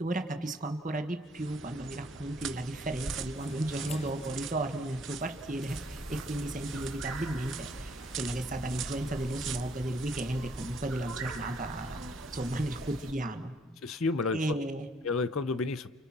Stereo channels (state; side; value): normal; both; correlation 0.64